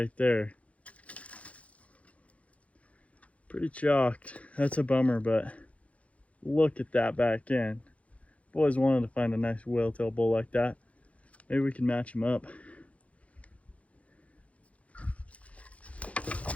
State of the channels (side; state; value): right; late; 0.065 ms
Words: there. Pretty chalked. That's a bummer, but look at that back end. Boys wanted to find a nice whale-tail bull like that. Maybe we can match him up.